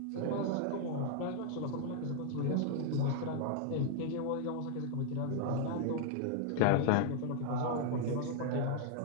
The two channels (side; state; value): both; different; correlation -0.01